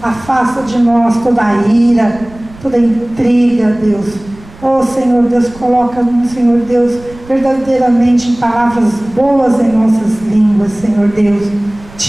Afasta de nós toda a ira, toda a intriga, Deus. Oh Senhor Deus, coloca, Senhor Deus, verdadeiramente palavras boas em nossas línguas, Senhor Deus.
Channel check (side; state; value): right; noise; rumble, 21 dB below the sound